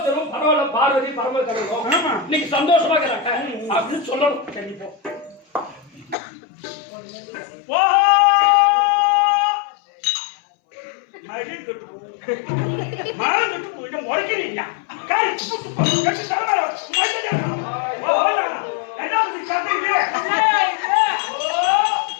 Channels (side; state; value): right; drops out; at 6.2 s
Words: தெருவும் பரவாயில்ல, பார்வதி பரம கடலும் இன்னைக்கு சந்தோஷமா இருக்கிறாங்க அப்படின்னு சொல்லணும். கண்டிப்பா